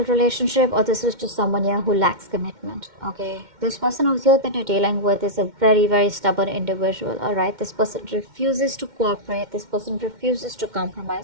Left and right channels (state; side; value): late; left; 2.1 ms